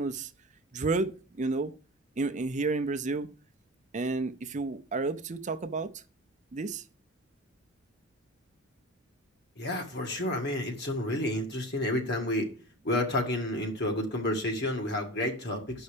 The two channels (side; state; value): both; normal; correlation 0.32